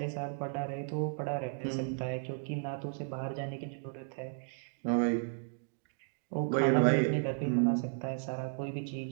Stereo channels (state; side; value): silent; left; digital silence